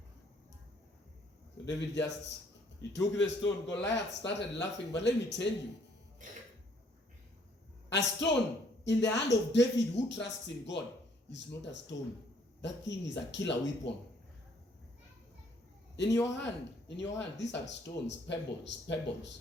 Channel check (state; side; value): normal; both; correlation 0.64